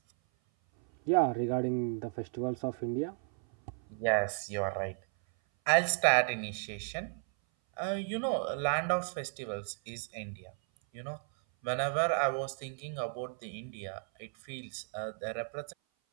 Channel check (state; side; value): silent; left; 55 dB below the other